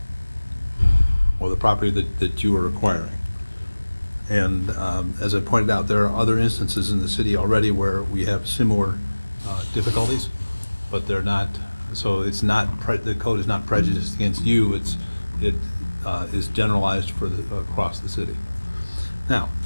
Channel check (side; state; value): both; inverted; correlation -1.00